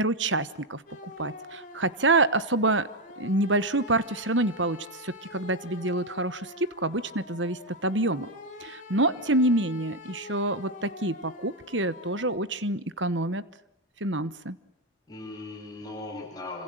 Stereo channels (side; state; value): both; normal; correlation 0.07